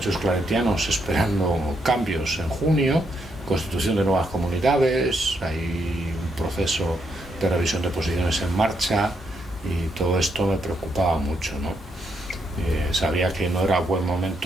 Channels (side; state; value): both; normal; correlation 0.78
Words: claretianos esperando cambios en junio, constitución de nuevas comunidades, hay un proceso de revisión de posiciones en marcha y todo esto me preocupaba mucho, ¿no? Sabía que no era buen